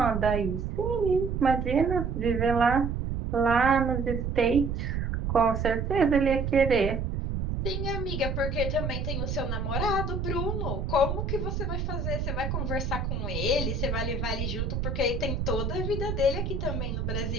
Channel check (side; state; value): right; noise; rumble, 2 dB below the sound